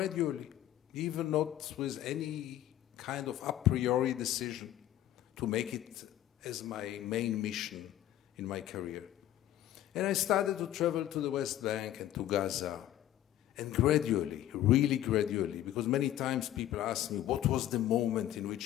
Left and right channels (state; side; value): quieter; right; 12.7 dB